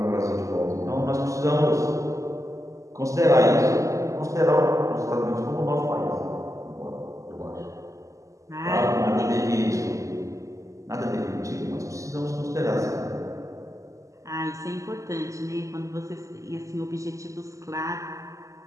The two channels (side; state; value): left; late; 0.16 ms